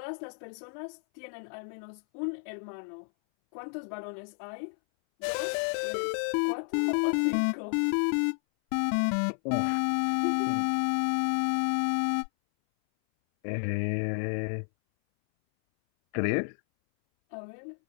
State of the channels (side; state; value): right; silent; 57 dB below the other